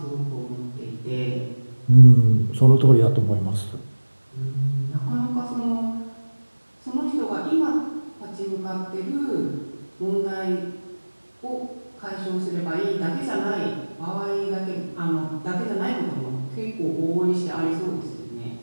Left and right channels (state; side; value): inverted; both; correlation -1.00